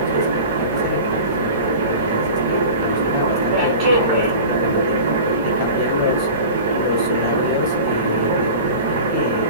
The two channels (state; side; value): inverted; both; correlation -0.36